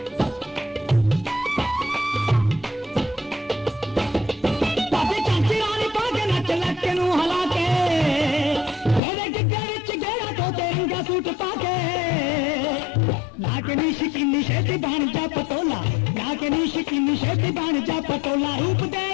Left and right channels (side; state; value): right; drops out; at 9.0 s